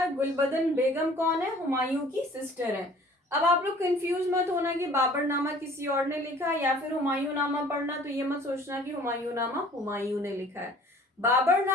गुलबदन बेगम कौन है, हुमायूं की सिस्टर है। अब आप लोग कंफ्यूज मत होना कि बाबर नामा किसी और ने लिखा है या फिर हुमायूं नामा पढ़ना तो ये मत सोचना कि हुमायूं नामा हुमायूं ने लिखा है। बाबर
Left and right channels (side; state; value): both; normal; correlation 0.51